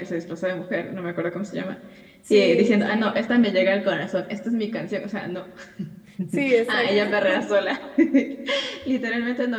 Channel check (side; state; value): both; identical; correlation 1.00